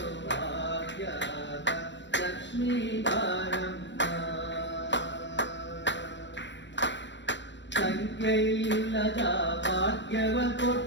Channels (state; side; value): late; right; 0.53 ms